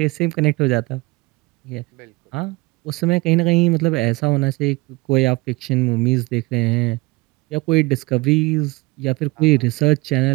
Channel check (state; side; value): quieter; left; 23.3 dB